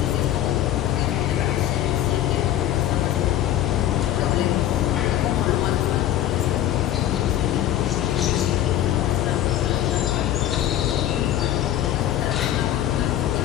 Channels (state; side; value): quieter; right; 12.0 dB